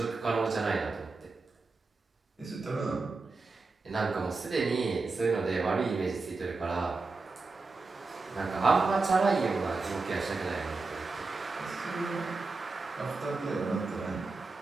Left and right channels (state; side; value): quieter; left; 3.9 dB